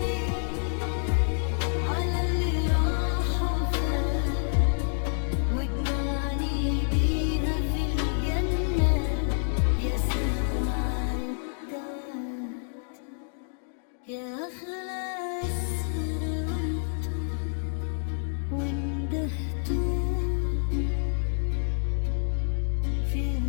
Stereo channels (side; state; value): right; silent; digital silence